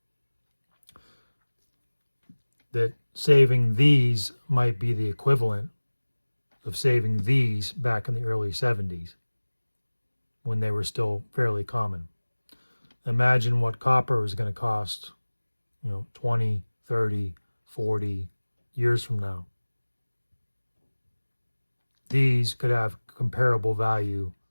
that saving these might be the equivalent of saving these back in the early 70s when they were still fairly common. Imagine what copper is going to cost, 20, 30, 40 years from now. These could have comparable value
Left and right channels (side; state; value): both; inverted; correlation -1.00